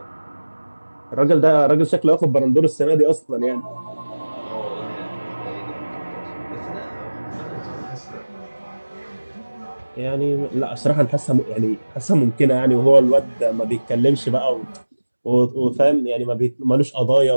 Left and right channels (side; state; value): both; inverted; correlation -1.00